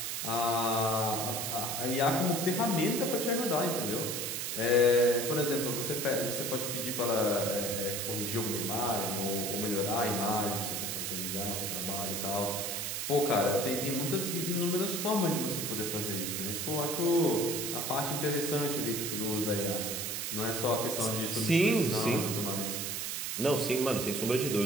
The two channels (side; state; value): right; noise; hiss, 2 dB below the sound